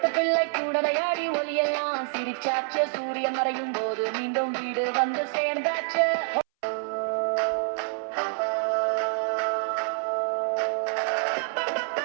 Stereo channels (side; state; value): left; silent; 60 dB below the other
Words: பிள்ளை கூட விளையாடி ஒலியெல்லாம் சிரிச்சாச்சு, சூரியன் மறையும் போது மீண்டும் வீடு வந்து சேர்ந்தாச்சு.